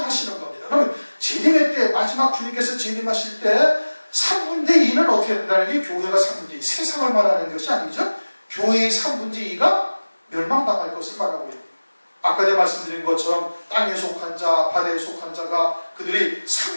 겁니다. 그러면 재림의 때, 마지막 주님께서 재림하실 때 3분의 2는 어떻게 된다는 게 교회가 3분의 2, 세상을 말하는 것이 아니죠. 교회의 3분의 2가 멸망당할 것을 말하고 있는 거예요. 아까 내가 말씀드린 것처럼 땅에 속한 자, 바다에 속한 자가 그들이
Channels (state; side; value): inverted; both; correlation -1.00